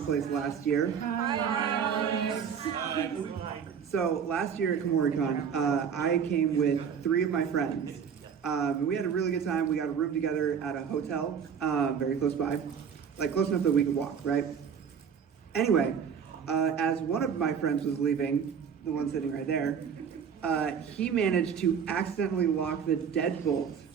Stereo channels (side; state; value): left; quieter; 7.2 dB